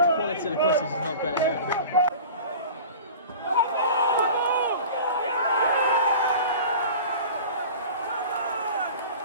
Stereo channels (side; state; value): both; inverted; correlation -0.38